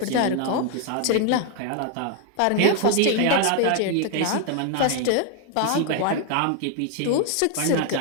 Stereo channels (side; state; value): both; different; correlation 0.01